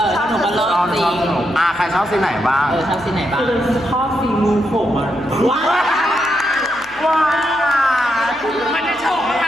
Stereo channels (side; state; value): left; noise; hum, 27 dB below the sound